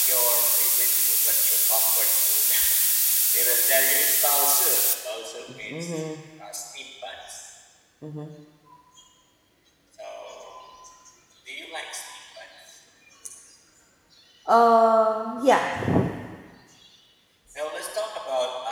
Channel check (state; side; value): identical; both; correlation 1.00